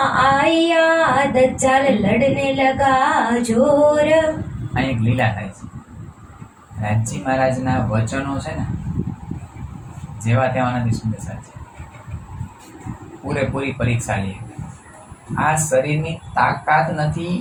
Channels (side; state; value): both; identical; correlation 1.00